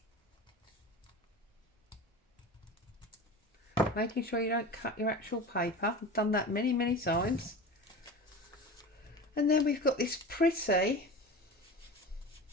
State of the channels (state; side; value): normal; both; correlation 0.32